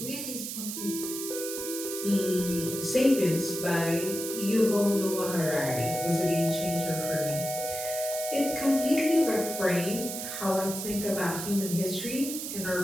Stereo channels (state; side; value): noise; right; hiss, 6 dB below the sound